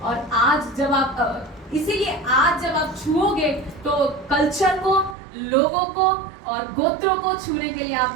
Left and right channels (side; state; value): left; drops out; at 5.2 s